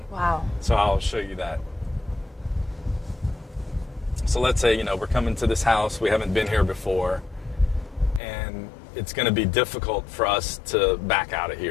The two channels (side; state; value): right; drops out; at 8.2 s